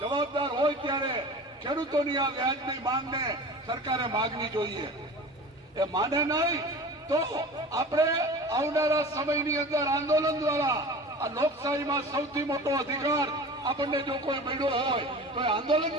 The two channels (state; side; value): normal; both; correlation 0.37